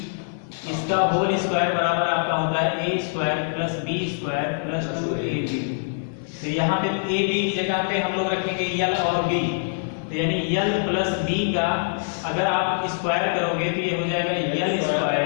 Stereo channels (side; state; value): right; silent; digital silence